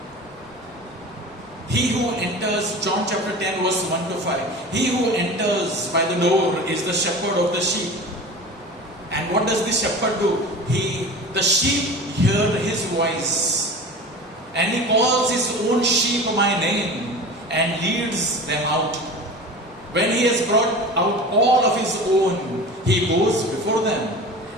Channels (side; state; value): both; normal; correlation 0.35